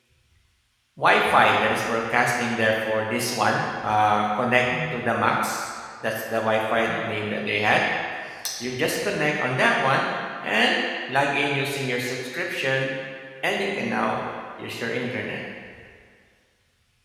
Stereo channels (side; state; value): both; identical; correlation 1.00